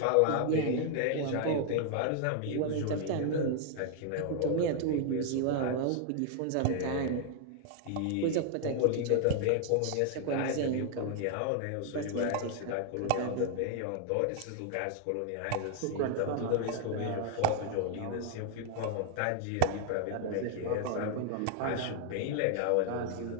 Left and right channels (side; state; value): both; different; correlation 0.00